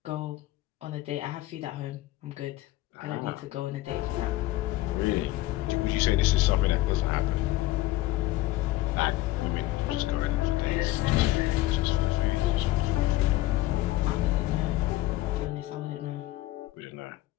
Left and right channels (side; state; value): right; quieter; 17.2 dB